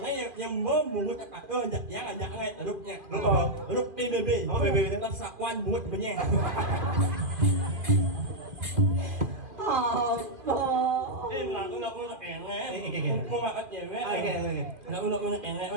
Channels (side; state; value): left; late; 2.5 ms